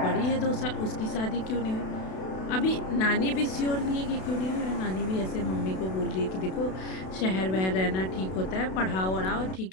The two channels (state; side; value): late; right; 32 ms